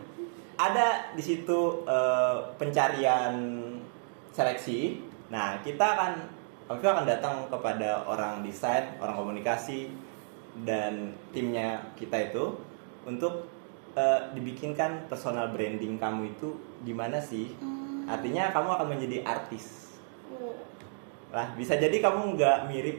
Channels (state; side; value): silent; left; digital silence